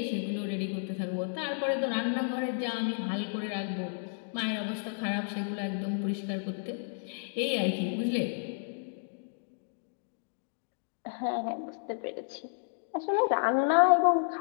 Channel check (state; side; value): silent; right; digital silence